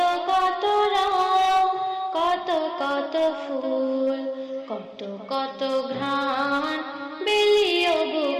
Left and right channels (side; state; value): both; identical; correlation 1.00